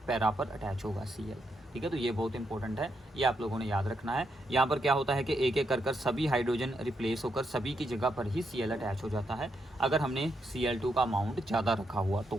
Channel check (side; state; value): both; normal; correlation 0.80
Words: पैरा पर अटैच होगा Cl। ठीक है, तो ये बहुत इंपॉर्टेंट है, ये आप लोगों ने याद रखना है। यहाँ पर क्या होता है कि एक एक कर सभी हाइड्रोजन रिप्लेस होकर सभी की जगह पर ही Cl अटैच हो जाता है अगर हमने Cl2 का अमाउंट ज़्यादा रखा हुआ तो।